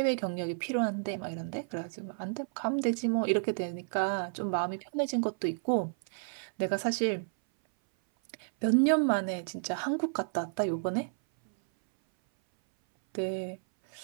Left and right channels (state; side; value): silent; left; 57 dB below the other